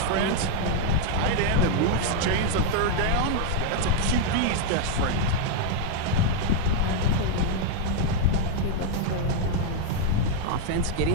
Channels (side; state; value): both; different; correlation 0.00